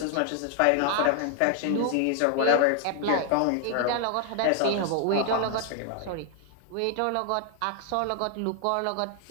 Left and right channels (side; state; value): both; different; correlation 0.00